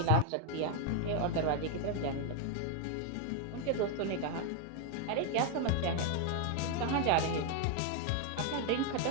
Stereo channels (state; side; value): different; both; correlation 0.01